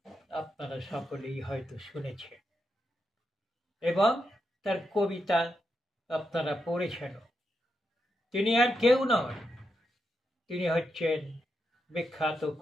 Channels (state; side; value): normal; both; correlation 0.84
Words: আপনারা সকলেই হয়তো শুনেছেন এবং তার কবিতা আপনারা পড়েছেন। তিনি আর কেউ নন, তিনি হচ্ছেন বিখ্যাত